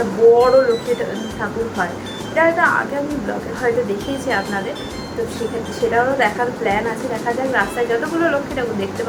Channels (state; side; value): identical; both; correlation 1.00